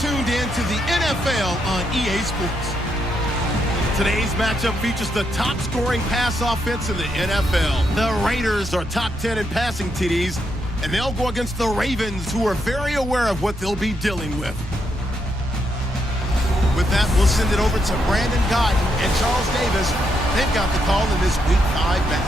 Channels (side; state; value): both; normal; correlation 0.79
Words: in to the NFL on EA Sports. Today's matchup features the top-scoring pass offense in the NFL. The Raiders are top 10 in passing TDs, and they'll go against the Ravens, who are very aware of what they'll be dealing with. With that, we'll send it over to Brandon Godden and Charles Davis. They've got the call in this Week 5